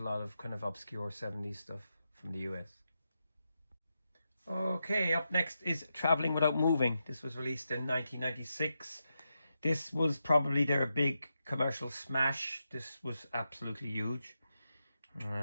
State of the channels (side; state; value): both; inverted; correlation -0.87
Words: lot of kind of obscure 70s stuff from the US. Okay, up next is Traveling Without Moving. This was released in 1996. This was probably their big commercial smash. This was absolutely huge.